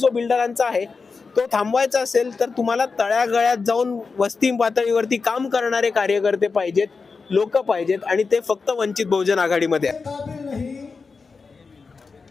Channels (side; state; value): right; quieter; 4.7 dB